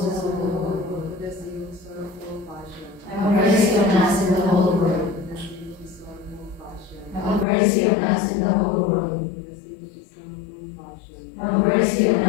the whole world. For the sake of his sorrowful passion. Have mercy on us and the whole world. For the sake of his sorrowful passion. Have mercy on us and the whole world. For the sake of his sorrowful passion. Have mercy on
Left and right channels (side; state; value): right; drops out; at 7.5 s